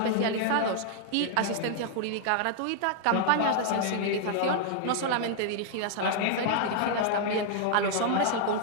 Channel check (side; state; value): both; different; correlation -0.01